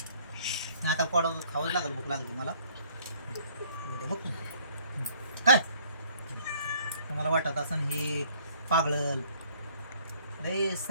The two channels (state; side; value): inverted; both; correlation -0.60